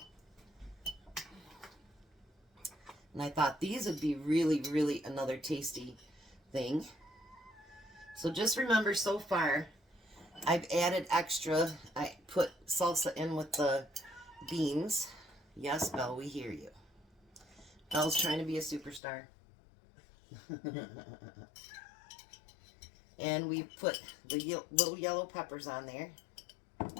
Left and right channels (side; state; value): right; drops out; at 19.0 s